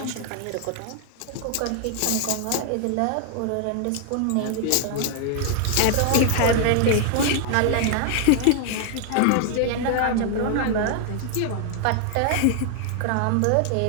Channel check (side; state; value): both; different; correlation 0.00